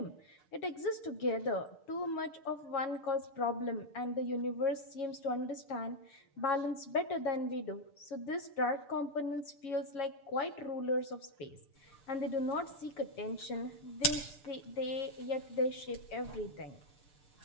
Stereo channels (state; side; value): late; right; 7.0 ms